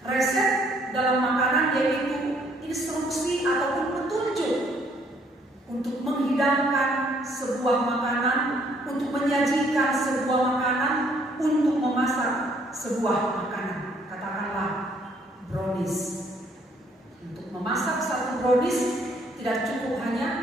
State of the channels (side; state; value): both; normal; correlation 0.65